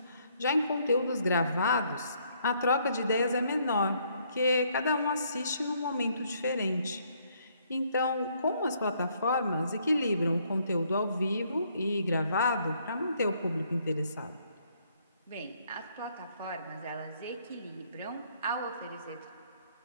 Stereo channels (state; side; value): inverted; both; correlation -0.68